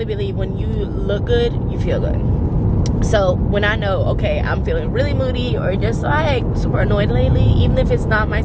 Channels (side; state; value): both; identical; correlation 1.00